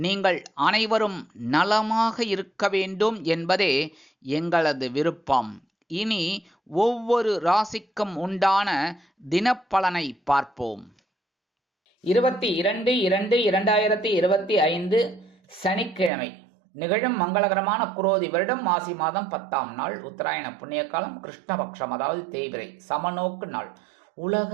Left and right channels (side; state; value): left; drops out; at 16.1 s